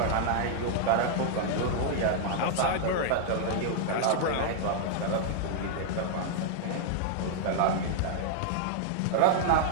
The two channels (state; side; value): different; both; correlation -0.01